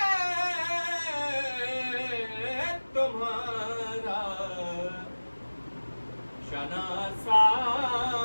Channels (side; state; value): both; inverted; correlation -1.00